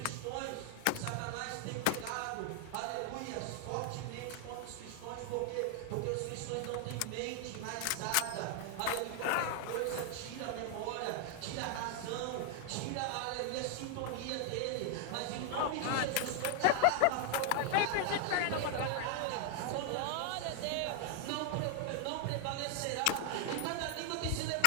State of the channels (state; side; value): different; both; correlation 0.00